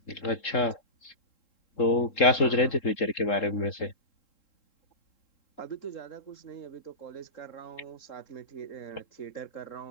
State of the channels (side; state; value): right; late; 3.7 ms